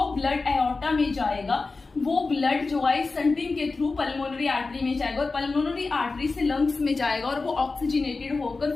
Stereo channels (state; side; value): quieter; right; 3.9 dB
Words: ब्लड एओर्टा में जाएगा वो ब्लड जो है स्टंटिंग के थ्रू पल्मोनरी आर्टरी में जाएगा और पल्मोनरी आर्टरी से लंग्स में जाएगा और वो ऑक्सीजनेटेड होकर